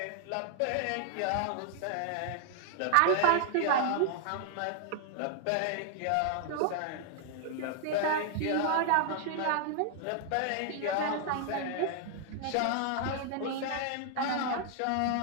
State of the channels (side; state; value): both; different; correlation 0.00